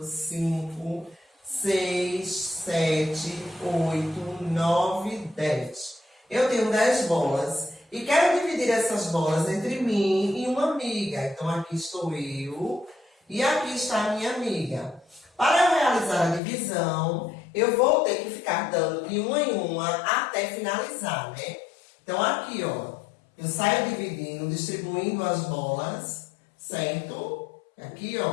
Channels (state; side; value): drops out; right; at 16.4 s